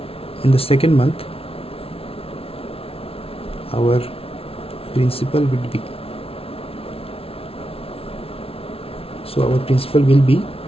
in the second month our principal will be,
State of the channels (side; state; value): right; late; 0.27 ms